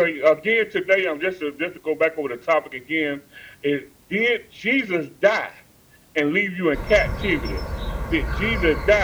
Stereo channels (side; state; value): both; identical; correlation 1.00